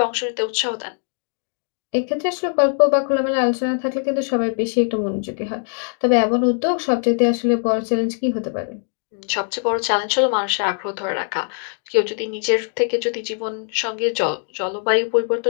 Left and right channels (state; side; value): silent; right; 58 dB below the other